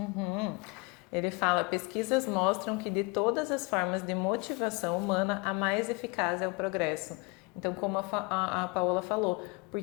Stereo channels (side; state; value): right; quieter; 27.6 dB